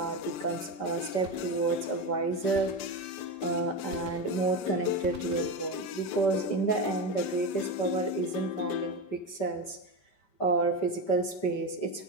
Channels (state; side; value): late; right; 5.2 ms